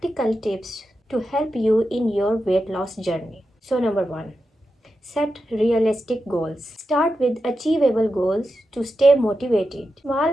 tips to help you in your weight loss journey. So number 1, set realistic goals. Start with achievable goals to stay motivated.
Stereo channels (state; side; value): normal; both; correlation 0.89